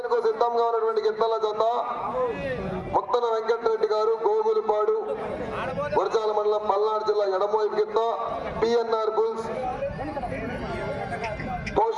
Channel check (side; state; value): both; identical; correlation 1.00